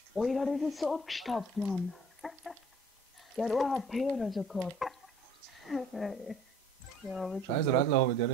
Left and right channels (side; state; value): both; normal; correlation 0.53